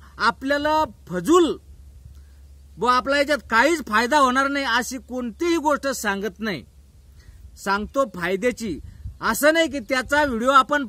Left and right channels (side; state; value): both; identical; correlation 1.00